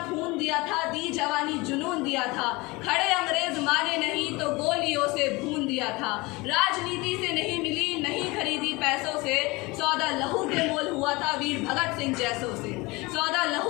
खून दिया था, दी जवानी जुनून दिया था, खड़े अंग्रेज माने नहीं तो गोलियों से भून दिया था। राजनीति से नहीं मिली, नहीं खरीदी पैसों से, सौदा लहू के मोल हुआ था वीर भगत सिंह जैसों से, सौदा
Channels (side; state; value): right; quieter; 23.7 dB